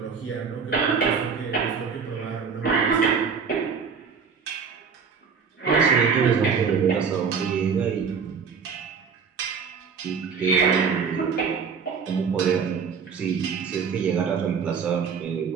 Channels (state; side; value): quieter; left; 5.9 dB